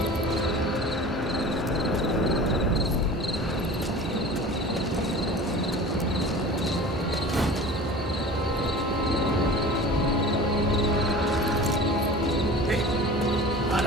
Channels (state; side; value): normal; both; correlation 0.38